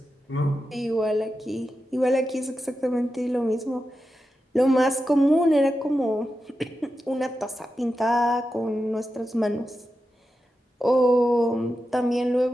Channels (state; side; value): normal; both; correlation 0.90